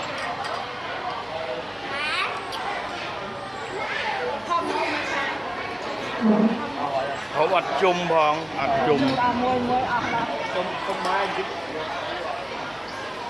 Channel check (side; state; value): right; noise; hum, 30 dB below the sound